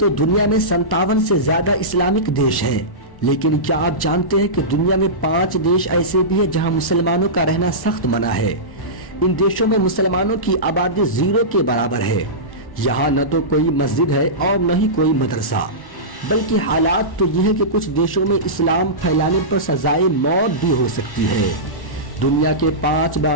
دنیا میں 57 سے زیادہ اسلامک دیش ہیں، لیکن کیا آپ جانتے ہیں کہ دنیا میں 5 دیش ایسے بھی ہیں جہاں مسلمانوں کا رہنا سخت منع ہے۔ ان دیشوں میں مسلمانوں کی آبادی 0 کے برابر ہے۔ یہاں نہ تو کوئی مسجد ہے اور نہ ہی کوئی مدرسہ، بلکہ حالات تو یہ ہے کہ کچھ دیشوں میں اسلام پھیلانے پر سزائے موت بھی ہو سکتی ہے۔ دنیا کے 5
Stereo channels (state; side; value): late; right; 1.1 ms